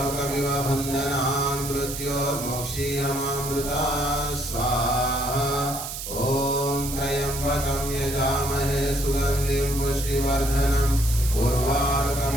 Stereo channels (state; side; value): noise; right; hiss, 7 dB below the sound